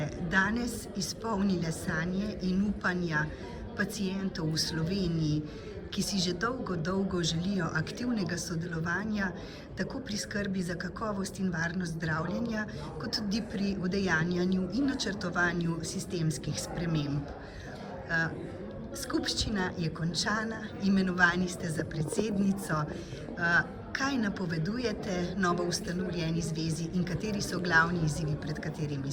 danes izpolnile sanje in upanja pacientov v Sloveniji, ki si že dolgo želijo aktivnega sodelovanja, tako pri skrbi za kakovost in varnost zdravljenja, kot tudi pri udejanjanju in načrtovanju sistemskih sprememb. Skupščina je končana, imenovani ste za predsednico. Kaj napovedujete novo ustanovljeni zvezi in kateri so glavni izzivi, pred katerimi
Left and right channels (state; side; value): identical; both; correlation 1.00